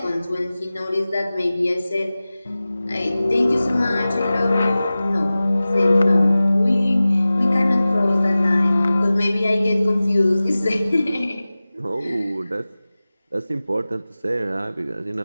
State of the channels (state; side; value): inverted; both; correlation -0.97